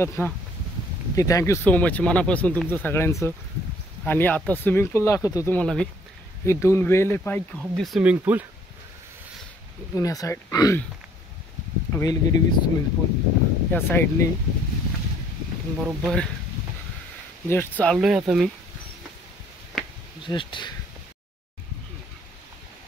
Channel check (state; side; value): normal; both; correlation 0.61